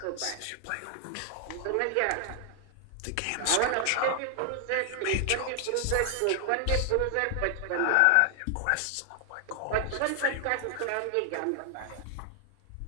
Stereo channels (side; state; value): both; different; correlation 0.00